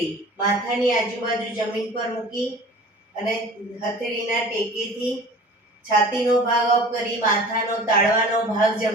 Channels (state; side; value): normal; both; correlation 0.43